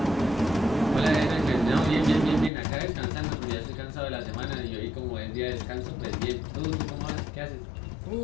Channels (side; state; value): right; drops out; at 2.5 s